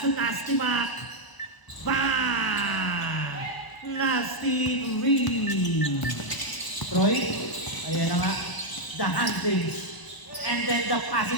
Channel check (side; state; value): right; late; 1.0 ms